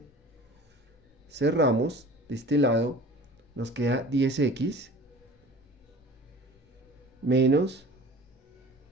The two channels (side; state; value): both; normal; correlation 0.43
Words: cerramos de este lado, nos queda 10x menos